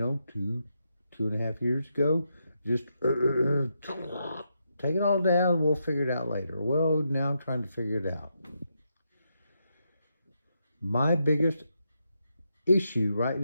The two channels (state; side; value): inverted; both; correlation -0.82